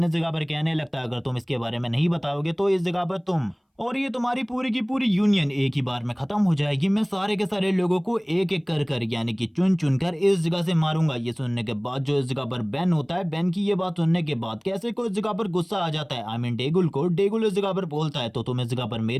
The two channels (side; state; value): both; identical; correlation 1.00